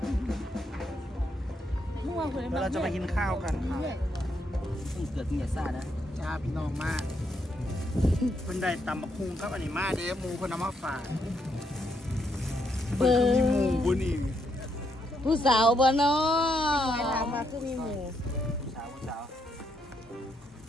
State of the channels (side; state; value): both; normal; correlation 0.77